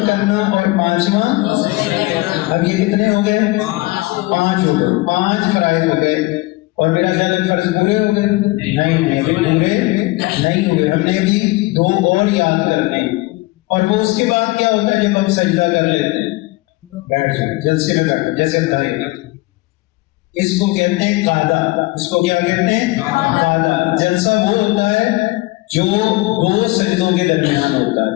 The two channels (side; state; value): right; quieter; 21.7 dB